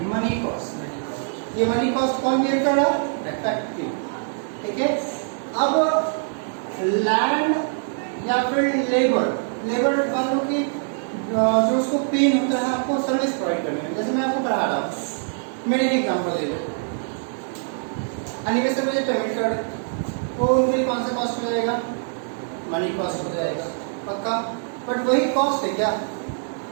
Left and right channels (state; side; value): silent; left; 63 dB below the other